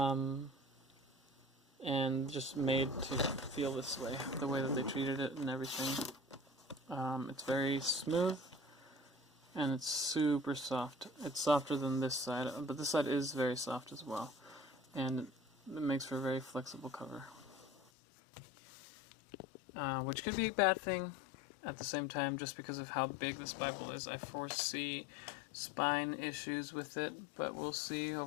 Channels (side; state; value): right; drops out; at 17.8 s